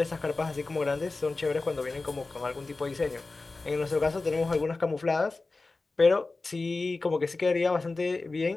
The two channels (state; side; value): quieter; right; 3.6 dB